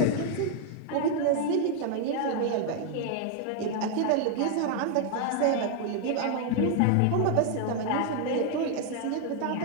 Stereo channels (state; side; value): different; both; correlation 0.00